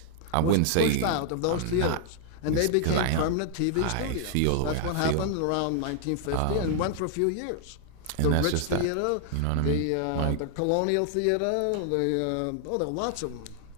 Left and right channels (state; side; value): different; both; correlation 0.00